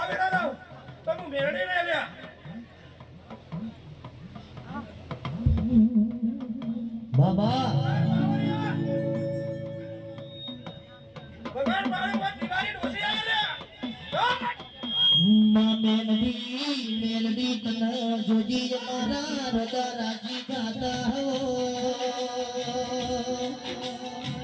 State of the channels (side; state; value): both; identical; correlation 1.00